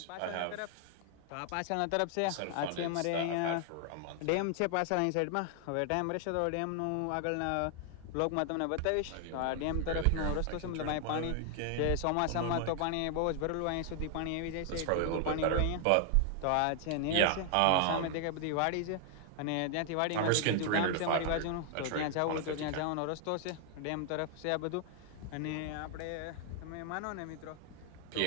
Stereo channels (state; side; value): different; both; correlation 0.00